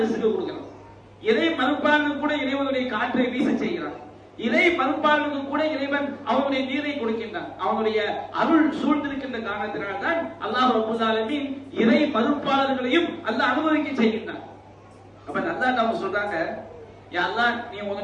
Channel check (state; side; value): identical; both; correlation 1.00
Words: கொடுக்கிறான். இறை மறுப்பாளனுக்கு கூட இறைவனுடைய காற்றை வீச செய்கிறான். இறை மறுப்பாளனுக்கு கூட இறைவன் அவனுடைய நீரை கொடுக்கின்றான். அவனுடைய அருள் சூழ்ந்திருக்கின்ற காரணத்தினால் தான் அல்லாஹ் ரப்பல் ஆலமீன் இறை மறுப்பாளர்களையும் அல்லாஹ் அனுபவிக்க செய்கின்றான். அப்ப அல்லாஹ் நம்ம சொல்றாங்க, யா அல்லாஹ் நீ